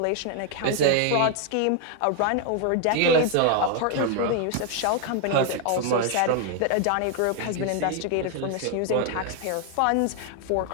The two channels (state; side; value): different; both; correlation 0.01